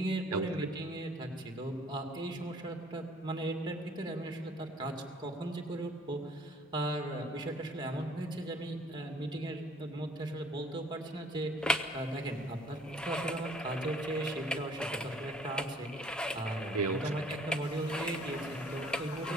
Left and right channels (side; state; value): both; normal; correlation 0.57